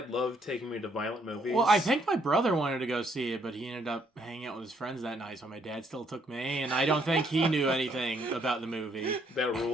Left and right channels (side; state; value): both; normal; correlation 0.70